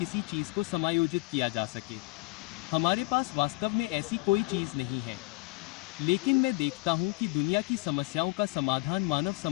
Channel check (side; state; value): right; quieter; 23.3 dB